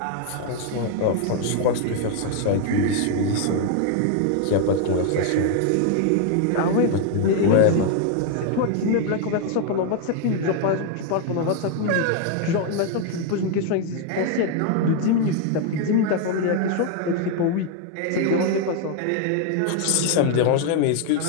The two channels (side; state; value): both; different; correlation 0.00